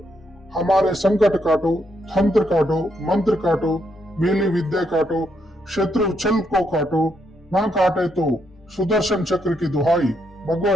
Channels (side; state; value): both; normal; correlation 0.77